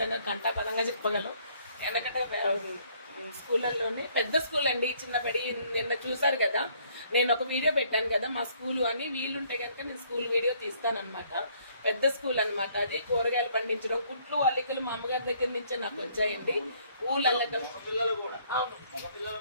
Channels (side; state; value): both; inverted; correlation -0.64